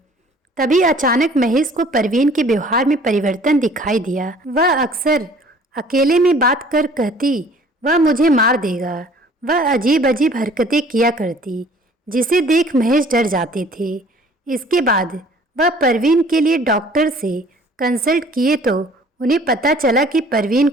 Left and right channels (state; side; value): normal; both; correlation 0.53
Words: तभी अचानक महेश को परवीन के व्यवहार में परिवर्तन दिखाई दिया। वह अक्सर अकेले में बात कर कहती, वह मुझे मार देगा। वह अजीब अजीब हरकतें किया करती, जिसे देख महेश डर जाते थे। इसके बाद वह परवीन के लिए डॉक्टर से कंसल्ट किए तो उन्हें पता चला कि परवीन